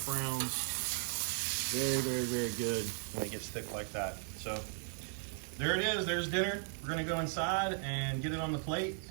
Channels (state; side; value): silent; left; 53 dB below the other